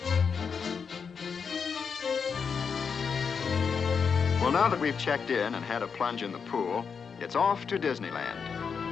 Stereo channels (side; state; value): right; quieter; 6.1 dB